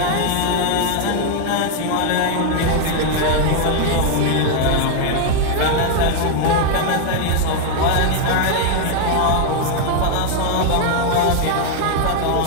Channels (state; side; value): different; both; correlation 0.00